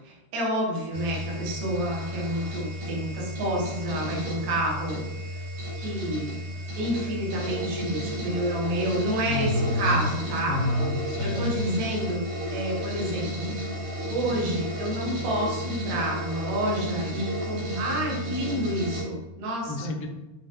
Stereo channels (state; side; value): late; left; 13 ms